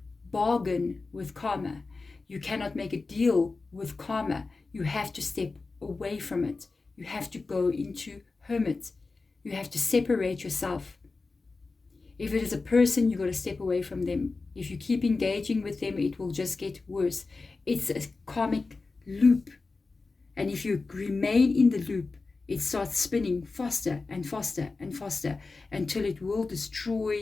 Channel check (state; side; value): quieter; right; 3.9 dB